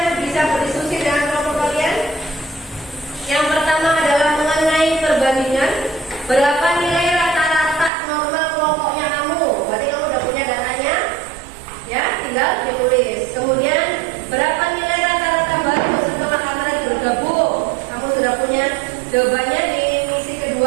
bisa berdiskusi dengan kelompok kalian. Yang pertama adalah mengenai perbandingan. Berapa nilai rata-rata normal kelompoknya kamu? Berarti kamu udah punya datanya. Ya, tinggal ditulis. Kemudian berapa nilai rata-rata baru setelah kalian bergabung? Kamu sudah punya jawabannya di misi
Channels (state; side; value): drops out; left; at 7.9 s